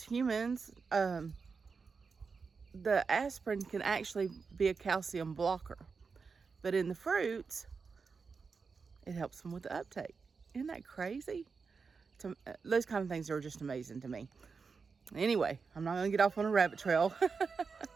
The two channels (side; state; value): left; quieter; 5.0 dB